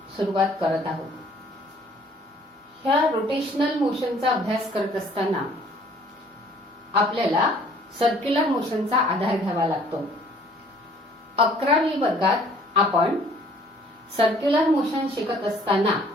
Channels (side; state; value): both; normal; correlation 0.57